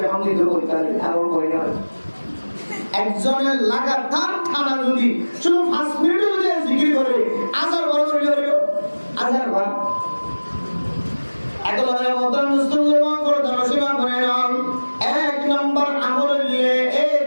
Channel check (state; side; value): inverted; both; correlation -1.00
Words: বিহামদিহি বলতে আর কই না একজনের লাগাতার ঠানা যদি শুধু 5 মিনিট যদি জিকির করে আজার বড় করে আজার বার একলা মতন মুসলমান করে ধর্মসীমা করে নাও এক নম্বর আমল নিয়ে এই